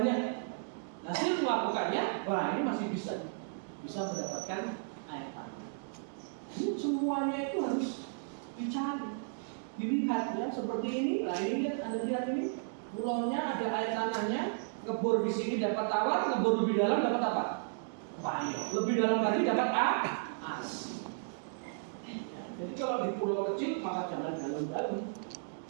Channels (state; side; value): silent; left; digital silence